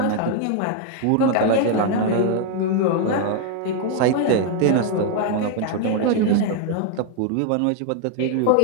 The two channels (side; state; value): both; different; correlation 0.00